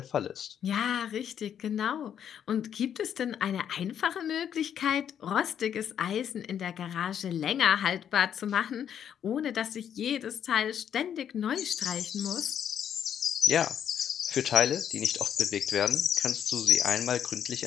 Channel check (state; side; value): quieter; right; 9.0 dB